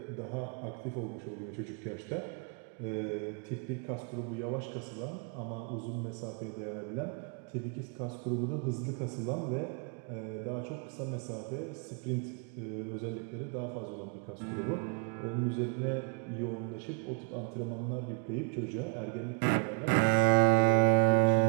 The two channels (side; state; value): left; quieter; 39.3 dB